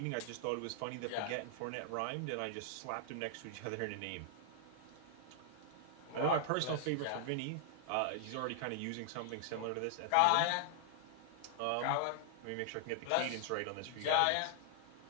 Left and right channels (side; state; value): both; different; correlation -0.01